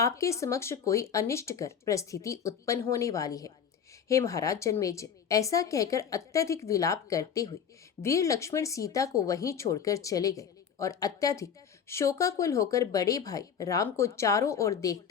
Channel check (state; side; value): quieter; right; 7.5 dB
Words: समक्ष कोई अनिष्टकर परिस्थिति उत्पन्न होने वाली है। हे महाराज जन्मेजय, ऐसा कहकर अत्यधिक विलाप करते हुए वीर लक्ष्मण सीता को वहीं छोड़कर चले गए और अत्यधिक शोकाकुल होकर बड़े भाई राम को चारों ओर